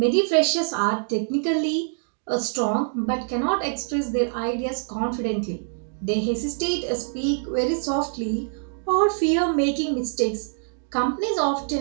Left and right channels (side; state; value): left; silent; digital silence